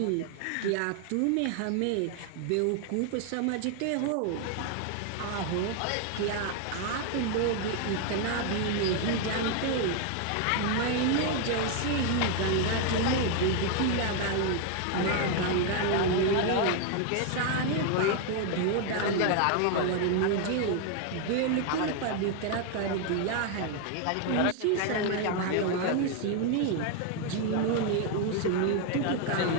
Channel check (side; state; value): both; different; correlation 0.01